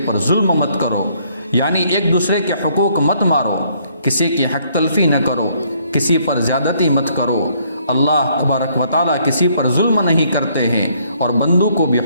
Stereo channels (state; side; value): inverted; both; correlation -0.66